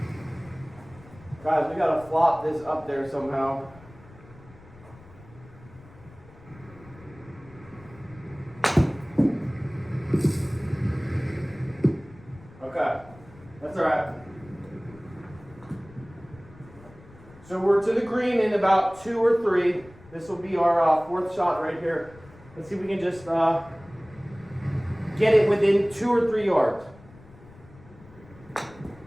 Guys, we gotta flop this up there somehow. Okay, that's all right. So we're to the green in about 2 or 3. This will be our fourth shot right here. Let's see if we can just get it within 2 or 3 yards.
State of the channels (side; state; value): left; noise; rumble, 22 dB below the sound